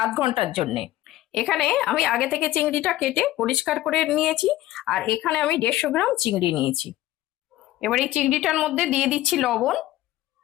আধ ঘন্টার জন্য। এখানে আমি আগে থেকে চিংড়িটা কেটে পরিষ্কার করে নিয়েছি, আর এখানে আমি 150 গ্রাম চিংড়ি নিয়েছি। এবার এই চিংড়িটার মধ্যে দিয়ে দিচ্ছি লবণ,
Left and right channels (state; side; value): quieter; right; 15.4 dB